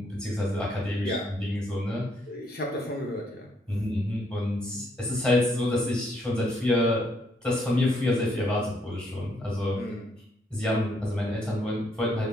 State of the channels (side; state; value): both; normal; correlation 0.72